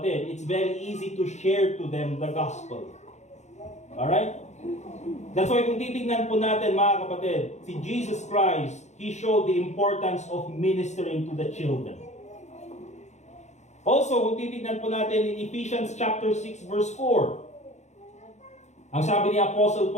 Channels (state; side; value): late; right; 0.33 ms